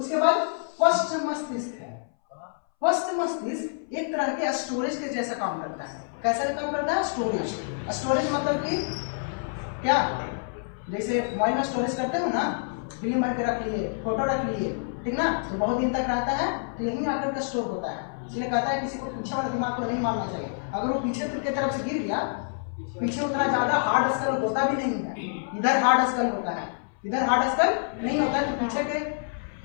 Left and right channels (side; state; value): right; silent; 60 dB below the other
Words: बाद पश्च मस्तिष्क है, पश्च मस्तिष्क एक तरह के स्टोरेज के जैसा काम करता है। कैसे काम करता है, स्टोरेज मतलब कि क्या, जैसे मोबाइल में स्टोरेज करते हो ना, फिल्म भर के रख लिए, फोटो रख लिए, ठीक ना, तो बहुत दिन तक रहता है, तो यहीं आकर का स्टोर होता है। इसलिए कहता है किसी को पीछे वाला दिमाग को नहीं मारना चाहिए, अगर वो पीछे की तरफ से गिर गया, पीछे उतना ज्यादा हार्ड स्कल होता भी नहीं है, इधर हार्ड स्कल होता है, इधर हार्ड स्कल नहीं होता है, तो पीछे के